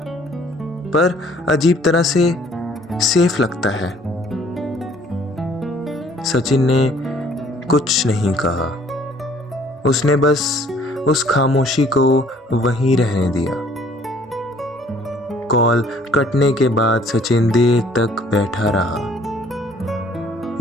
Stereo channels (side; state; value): both; normal; correlation 0.58